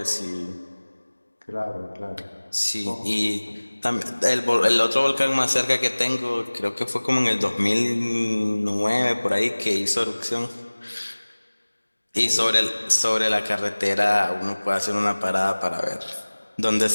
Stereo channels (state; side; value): inverted; both; correlation -1.00